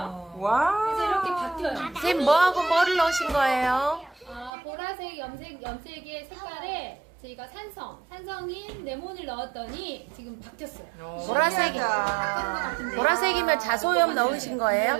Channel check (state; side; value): drops out; left; at 4.5 s